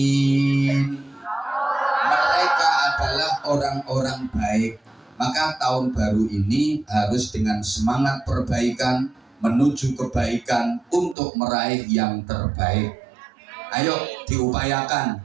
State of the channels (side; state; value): left; drops out; at 11.2 s